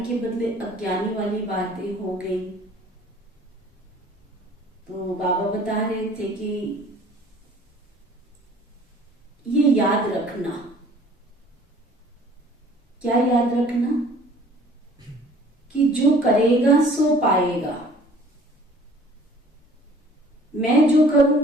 के बदले अज्ञानी वाली बातें हो गई। तो बाबा बता रहे थे कि ये याद रखना। क्या याद रखना? कि जो करेगा सो पाएगा। मैं जो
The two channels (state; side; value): normal; both; correlation 0.52